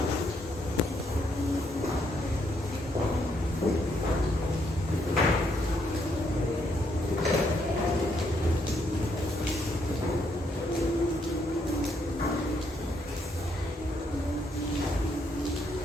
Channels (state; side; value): normal; both; correlation 0.74